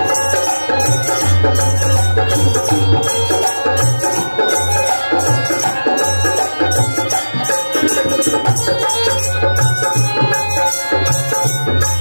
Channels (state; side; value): inverted; both; correlation -1.00